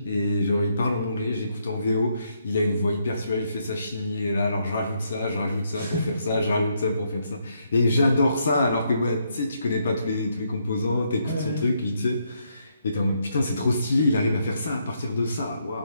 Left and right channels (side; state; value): both; inverted; correlation -0.76